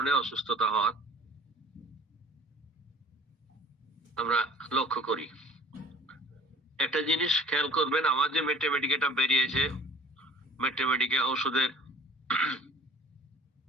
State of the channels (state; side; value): normal; both; correlation 0.48